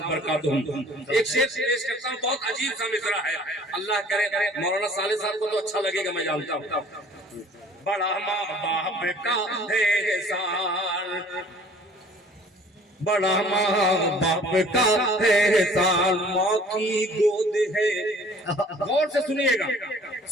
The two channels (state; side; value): normal; both; correlation 0.53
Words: बरकातुहुम। एक शेर पेश करता हूँ, बहुत अजीब सा मिसरा है, अल्लाह करे मौलाना साले साहब को तो अच्छा लगेगा, मैं जानता हूँ। बड़ा माँ बाप का है एहसान, बड़ा माँ बाप का है एहसान, माँ की गोद है। गौर से सुनिएगा,